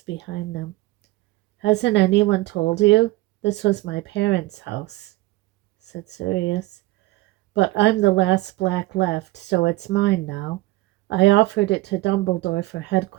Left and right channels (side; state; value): left; quieter; 18.9 dB